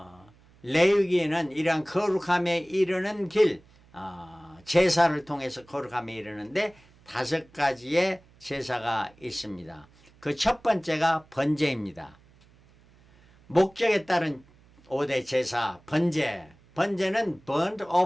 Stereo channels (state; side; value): noise; right; hum, 28 dB below the sound